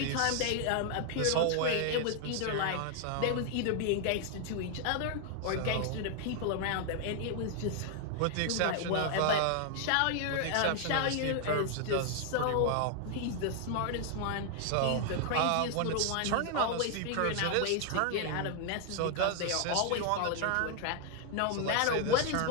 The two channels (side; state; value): both; different; correlation 0.00